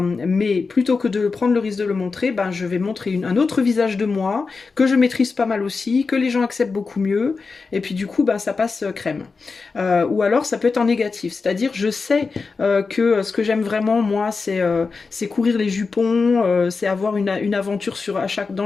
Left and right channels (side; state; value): right; quieter; 4.5 dB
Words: plutôt que de prendre le risque de le montrer, ben, je vais montrer un autre visage de moi, que je maîtrise pas mal aussi, que les gens acceptent beaucoup mieux, et puis du coup, ben, ça passe crème. Ou alors, ça peut être en négatif, c'est-à-dire, je sais que ce que j'aime vraiment, moi, c'est courir les jupons, c'est avoir une aventure